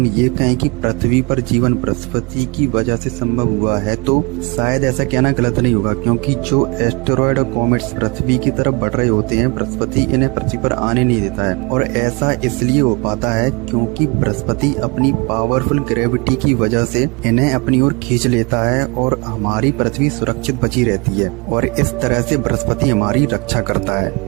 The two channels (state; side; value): quieter; left; 28.4 dB